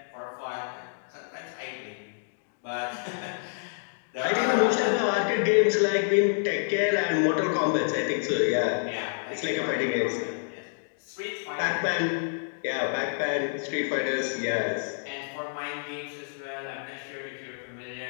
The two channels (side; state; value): right; silent; digital silence